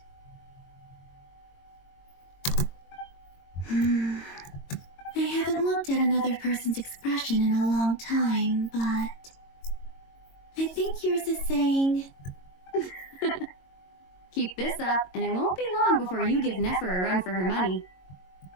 I haven't looked at another person's expression in a long time, but I think yours is saying... Keep this up, and it won't be long before you give Nefer a run for her money.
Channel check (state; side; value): late; right; 22 ms